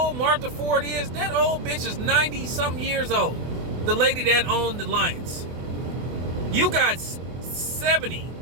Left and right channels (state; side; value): late; left; 24 ms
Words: Martha Ford is? That old bitch is 90-something years old. The lady that owned the Lions. You got 70,